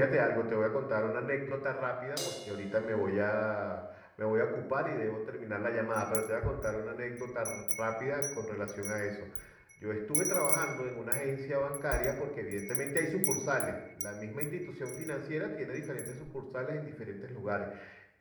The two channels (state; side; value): identical; both; correlation 1.00